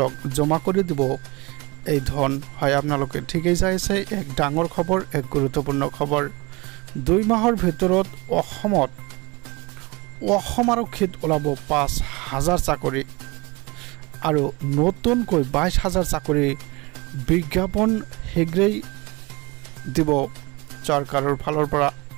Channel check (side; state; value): left; quieter; 24.9 dB